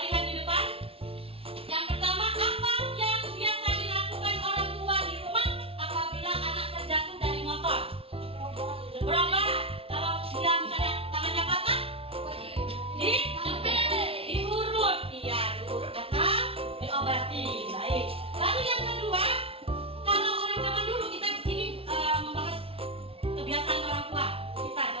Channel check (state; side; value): late; left; 0.27 ms